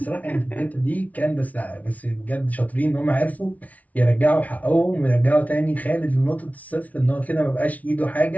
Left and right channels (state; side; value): late; right; 0.071 ms